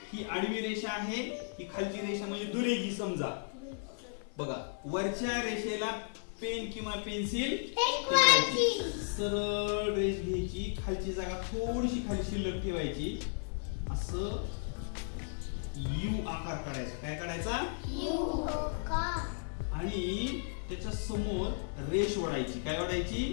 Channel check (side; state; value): right; silent; 55 dB below the other